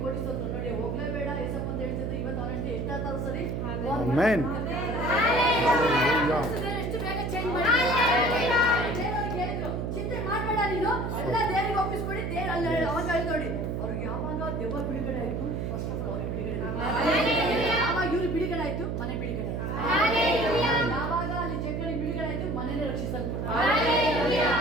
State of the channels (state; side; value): noise; right; hum, 2 dB below the sound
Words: ಕೋಟಿಸೋದು. ನೋಡಿ ಹೋಗ್ಲೇಬೇಡ ಏಸಪ್ಪ ಅಂತ ಹೇಳ್ತಿದ್ರು. ಇವತ್ತು ಅವನಷ್ಟೇ ಎಷ್ಟಾದ್ರು ಸರಿ ಎಷ್ಟು ಬೇಗ ಚೇಂಜ್ ಮಾಡಿ ಚಿಂತೆ ಮಾಡ್ಬೇಡ ನೀನು, ಎಲ್ಲ ದೇವರಿಗೆ ಒಪ್ಪಿಸ್ಕೊಡಿ. ದೇವ್ರು ಅಲ್ಲಿ ಅವಾಗ ಹೇಳಿ ನೋಡಿ ಅವ್ರಿಗೆ ಯಾವಾಗ ದೆವ್ವ ಬಿಡುಗಡೆ ಆಯ್ತು, ಫಸ್ಟ್ ಆಫ್ ಆಲ್ ಅವ್ರಿಗೆ ಬಿಡುಗಡೆ ಆಯ್ತು. ಯಾವಾಗ ಇವ್ರು ಬಿಡುಗಡೆ ಆಯ್ತು, ಮನೆ ಬಿಡುಗಡೆ ಆಯ್ತು. ಯಾವಾಗ ಅಲ್ಲಿ ಜಗಣಿ ಬಿಡುಗಡೆ ಆಯ್ತು, ಮನೇನೆ ರಕ್ಷಿಸಲ್ಪಟ್ಟು.